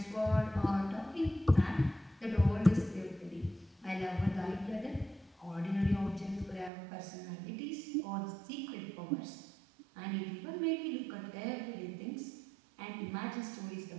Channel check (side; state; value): left; drops out; at 6.7 s